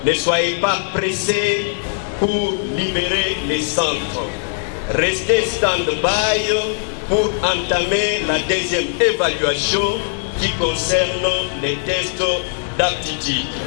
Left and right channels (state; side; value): silent; right; 60 dB below the other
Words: ne soyez pas pressés pour libérer les centres. Restez stand-by pour entamer la deuxième évaluation qui concerne les tests d'aptitude.